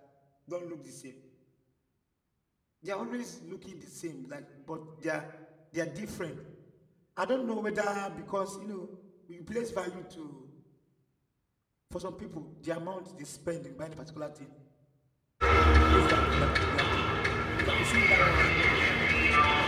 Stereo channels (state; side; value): identical; both; correlation 1.00